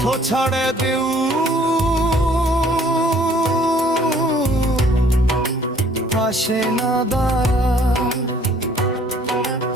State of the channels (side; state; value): both; normal; correlation 0.58